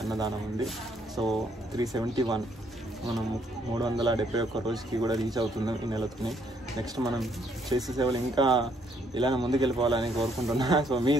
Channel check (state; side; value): normal; both; correlation 0.69